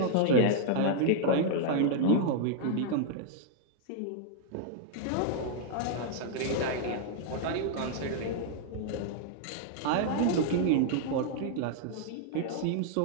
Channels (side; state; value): both; different; correlation -0.01